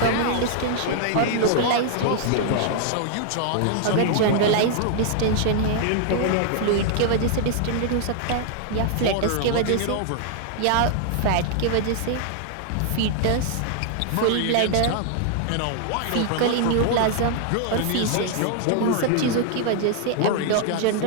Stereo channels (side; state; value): both; different; correlation 0.00